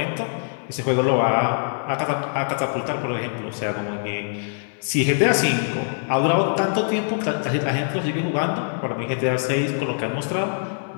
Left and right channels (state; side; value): silent; right; digital silence